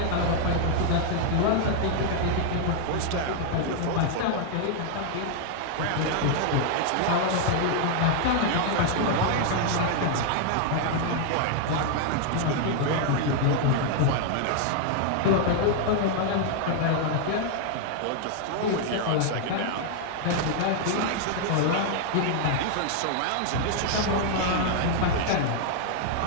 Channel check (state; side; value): different; both; correlation 0.00